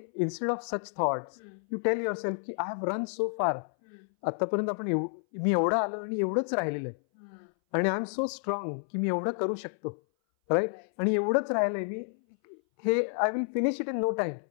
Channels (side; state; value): right; silent; 58 dB below the other